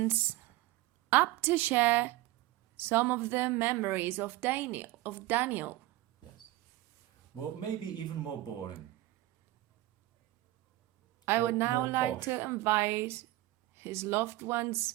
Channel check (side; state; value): left; quieter; 17.8 dB